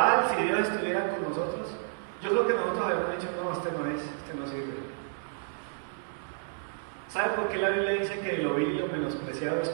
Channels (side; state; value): left; silent; digital silence